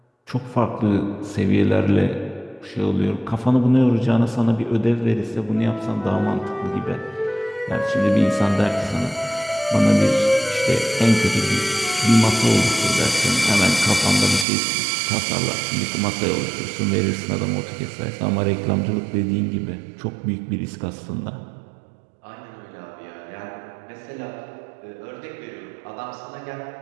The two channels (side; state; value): left; drops out; at 14.5 s